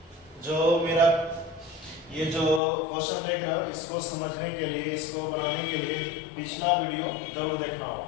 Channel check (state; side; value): drops out; right; at 2.6 s